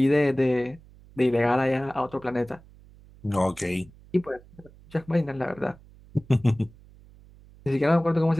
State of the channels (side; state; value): right; noise; hum, 24 dB below the sound